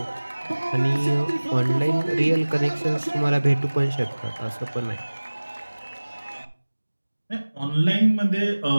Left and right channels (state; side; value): inverted; both; correlation -1.00